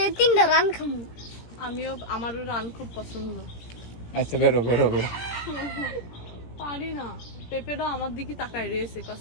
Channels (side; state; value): right; late; 17 ms